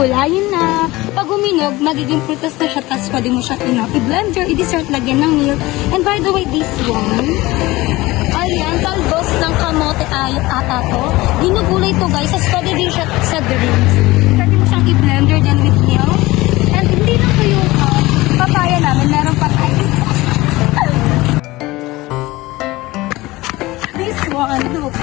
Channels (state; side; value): quieter; right; 19.9 dB